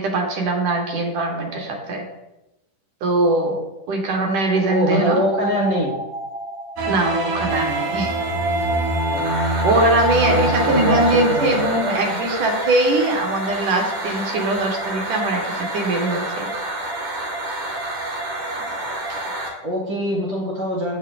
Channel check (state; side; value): late; left; 10 ms